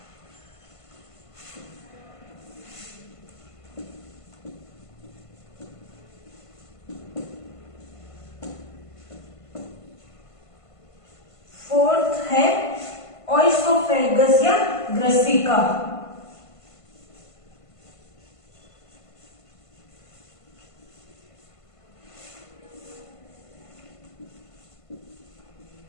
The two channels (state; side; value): late; right; 1.5 ms